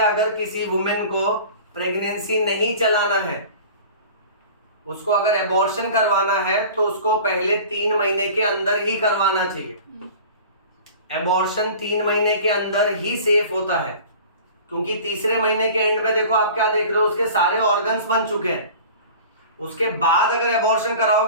किसी वुमेन को प्रेगनेंसी नहीं चलाना है, उसको अगर एबॉर्शन करवाना है तो उसको पहले 3 महीने के अंदर ही करवाना चाहिए। एबॉर्शन 3 महीने के अंदर ही सेफ होता है, क्योंकि तीसरे महीने के एंड में देखो आप क्या देख रहे हो, उसके सारे ऑर्गन्स बन चुके हैं। उसके बाद अगर एबॉर्शन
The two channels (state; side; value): inverted; both; correlation -0.41